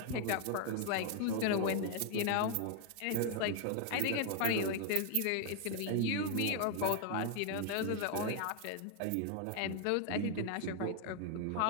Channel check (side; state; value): both; different; correlation 0.00